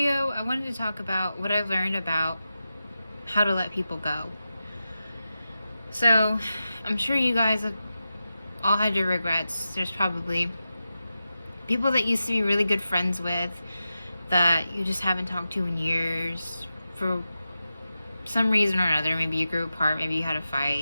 I wanted to talk about what I've learned about how to let people go. So I'm sure you guys have all had your regrets. There's probably people that used to be really good friends with that you just haven't talked to in years for some reason or another. Maybe you grew apart, maybe you had a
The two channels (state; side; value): inverted; both; correlation -0.91